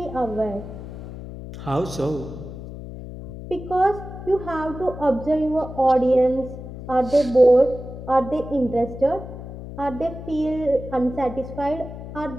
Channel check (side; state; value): left; noise; hum, 11 dB below the sound